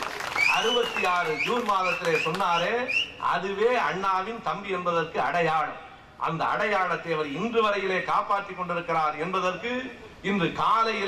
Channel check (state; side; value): identical; both; correlation 1.00